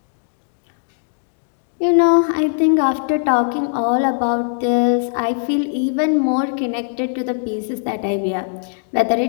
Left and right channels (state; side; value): silent; right; digital silence